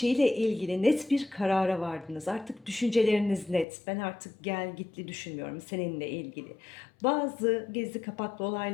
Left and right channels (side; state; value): right; drops out; at 3.7 s